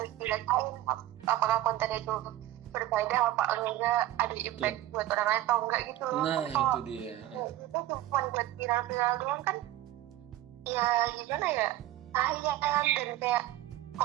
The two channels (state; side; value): quieter; left; 14.3 dB